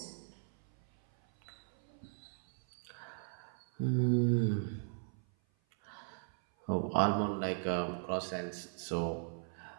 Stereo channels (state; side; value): silent; left; 53 dB below the other